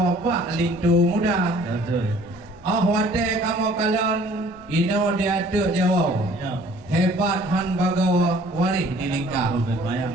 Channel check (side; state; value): both; normal; correlation 0.54